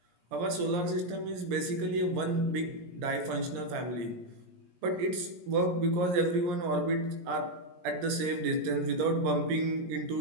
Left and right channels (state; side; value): late; left; 17 ms